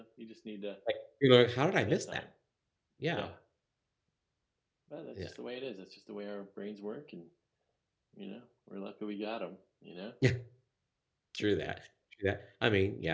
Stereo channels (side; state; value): both; identical; correlation 1.00